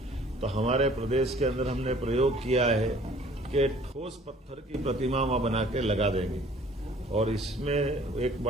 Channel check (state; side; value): normal; both; correlation 0.53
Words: तो हमारे प्रदेश के अंदर हमने प्रयोग किया है कि ठोस पत्थर की प्रतिमा वहां बना के लगा देंगे। और इसमें एक